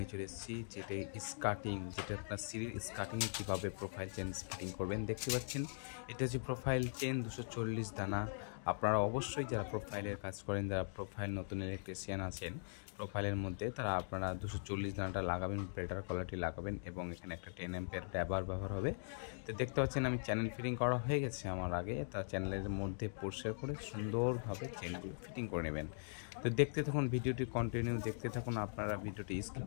চলে এসেছি, যেটা স্কার্টিং, যেটা আপনার সিঁড়ির স্কার্টিংয়ে কীভাবে প্রোফাইল চেন ফিটিং করবেন। দেখতে পাচ্ছেন এটা হচ্ছে প্রোফাইল চেন 240 দানা। আপনারা অবশ্যই যারা প্রোফাইলের কাজ করেন, যারা প্রোফাইল নতুন ইলেকট্রিশিয়ান আছেন প্রোফাইলের মধ্যে, তারা আপনারা 240 দানাটা লাগাবেন, বেটার কোয়ালিটি লাগাবেন। এবং এখানে একটা 10 অ্যাম্পিয়ার ড্রাইভার ব্যবহার হবে। তো দেখতে পাচ্ছেন আমি চ্যানেল ফিটিং করা হয়ে গেছে আমার আগে, তা চ্যানেলের মধ্যে পরিষ্কার করে সুন্দরভাবে চেনগুলো ফিটিং করে নেবেন। তো দেখতে থাকুন, ভিডিওটি কন্টিনিউ দেখতে থাকুন। আপনারা ভিডিওটি স্কিপ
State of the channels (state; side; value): silent; right; digital silence